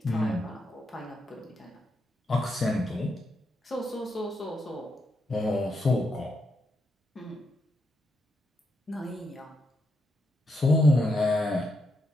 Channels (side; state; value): both; normal; correlation 0.81